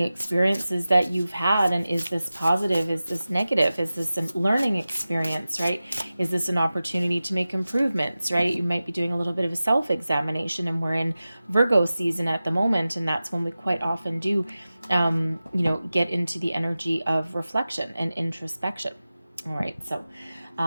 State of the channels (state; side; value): inverted; both; correlation -0.95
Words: experiences that you've had, and is this positive, is this negative, is this a learning experience, right? Is this an opportunity to make improvements, right? You might be doing a little bit of a self-examination, and we're in Virgo season at the moment, and that's when we quite often do get into the energy of reflection and introspection. All right, so